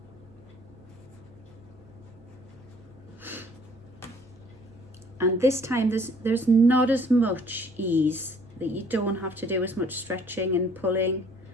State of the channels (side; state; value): both; normal; correlation 0.58